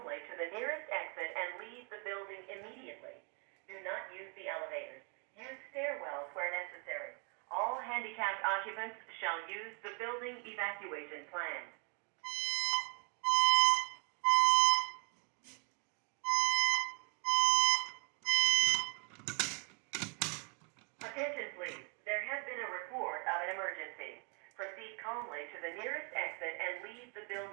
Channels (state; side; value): quieter; left; 37.1 dB